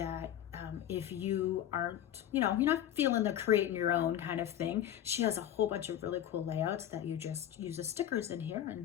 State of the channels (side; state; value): right; quieter; 11.2 dB